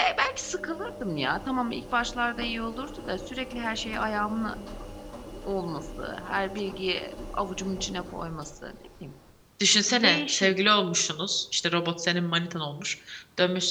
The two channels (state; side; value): identical; both; correlation 1.00